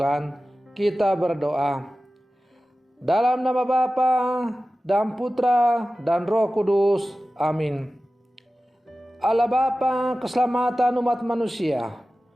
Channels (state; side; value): normal; both; correlation 0.95